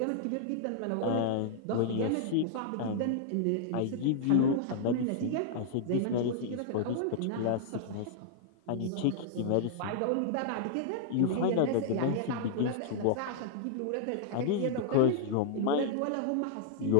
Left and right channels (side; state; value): both; different; correlation -0.01